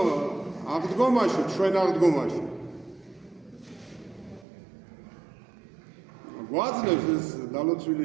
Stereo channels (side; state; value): left; drops out; at 4.5 s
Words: აღდგომაში, ჩვენ აღდგომაში გვაძლევს ეს